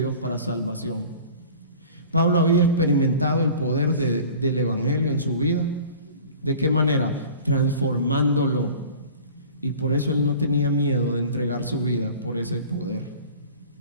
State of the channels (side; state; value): both; inverted; correlation -0.43